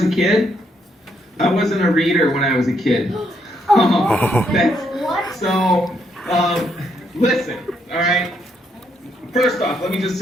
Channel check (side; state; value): both; normal; correlation 0.75